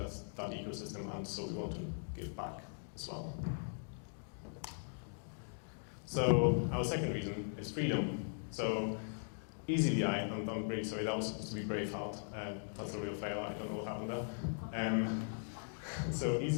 ecosystem, and so we want to give back as well. So our second reason is freedom. So eazyBI, I'm really sorry, that was supposed to be Braveheart. That's a real fail, I don't know what happened there. So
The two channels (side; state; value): right; silent; digital silence